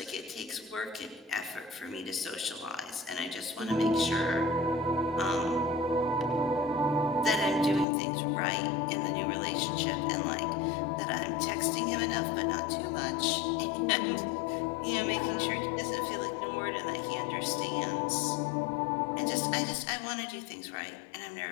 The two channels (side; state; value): right; drops out; at 7.9 s